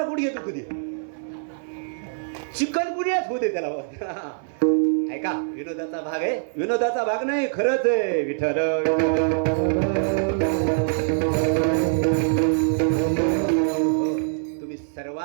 गुडघे दुखू दे. चिकन गुन्ह्याच होऊ दे त्याला. ऐका, विनोदाचा भाग आहे. विनोदाचा भाग नाही, खरंच आहे. विठ्ठल तुम्ही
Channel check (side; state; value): left; silent; 62 dB below the other